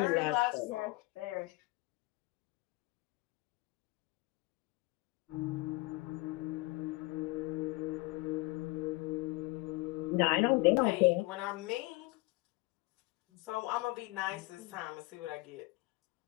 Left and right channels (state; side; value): quieter; right; 23.1 dB